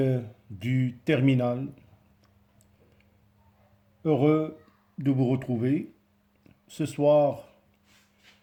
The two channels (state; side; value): identical; both; correlation 1.00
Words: du terminal. Heureux de vous retrouver. Ce soir,